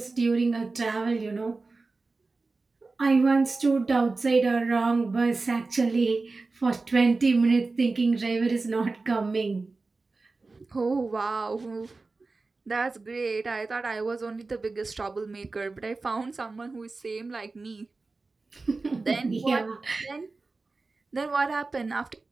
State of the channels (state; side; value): quieter; left; 3.7 dB